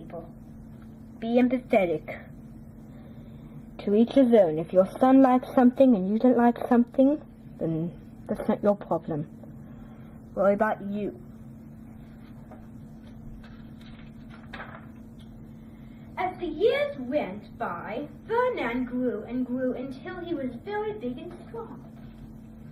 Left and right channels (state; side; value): identical; both; correlation 1.00